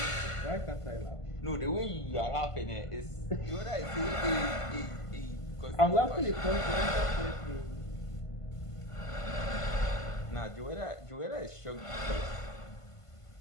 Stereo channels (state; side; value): late; right; 1.5 ms